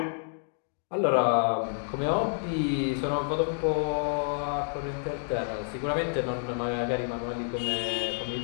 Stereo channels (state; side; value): silent; right; 58 dB below the other